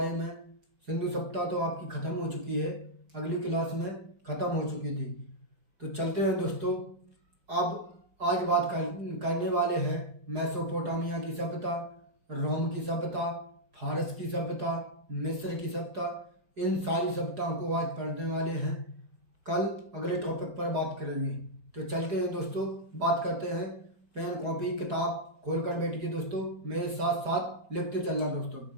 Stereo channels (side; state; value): left; late; 4.8 ms